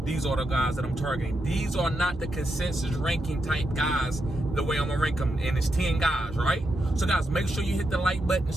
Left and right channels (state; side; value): normal; both; correlation 0.84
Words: these are the guys that I'm targeting. These are not the consensus ranking type guys the way I'm going to rank them, and it's 10 guys, right? So, guys, make sure you hit the like button